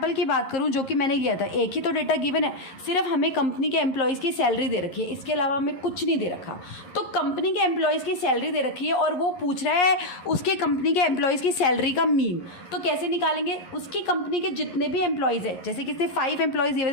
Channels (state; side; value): late; right; 11 ms